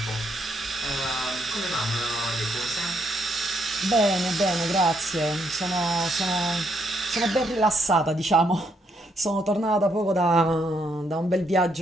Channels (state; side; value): normal; both; correlation 0.74